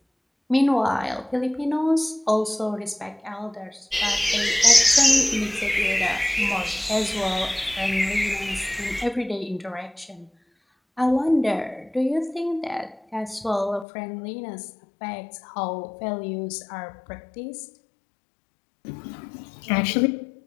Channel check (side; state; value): right; drops out; at 13.9 s